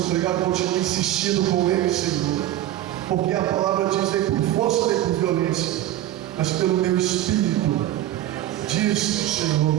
continuem insistindo com Ele, Senhor, porque a palavra diz: nem por força nem por violência, mas pelo meu Espírito, diz o Senhor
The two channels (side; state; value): left; quieter; 13.6 dB